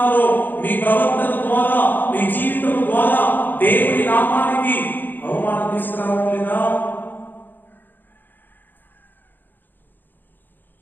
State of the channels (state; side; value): late; right; 0.090 ms